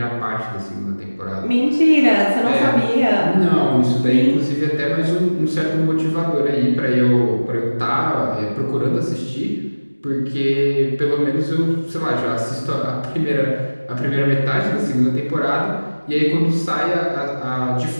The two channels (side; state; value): both; inverted; correlation -1.00